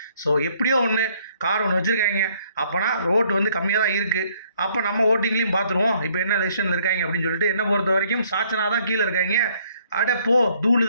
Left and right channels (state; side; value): inverted; both; correlation -0.65